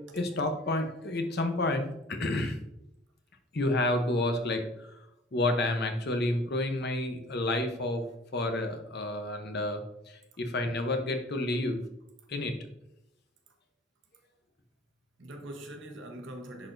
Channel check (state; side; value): normal; both; correlation 0.48